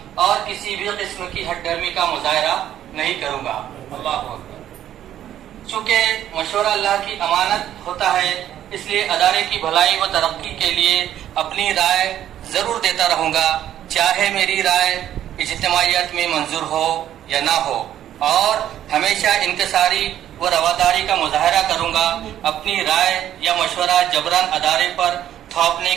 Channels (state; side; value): quieter; left; 11.4 dB